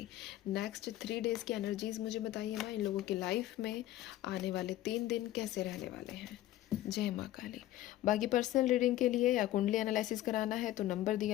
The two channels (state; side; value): quieter; right; 14.4 dB